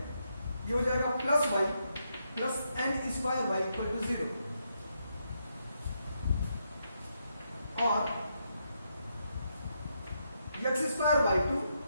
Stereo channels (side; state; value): both; inverted; correlation -0.80